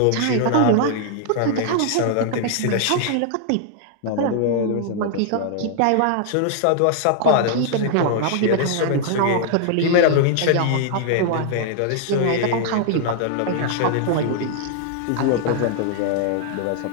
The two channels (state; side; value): different; both; correlation -0.01